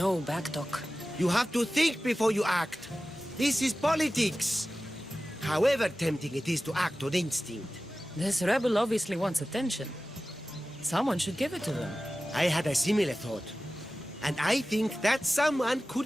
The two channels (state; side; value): normal; both; correlation 0.95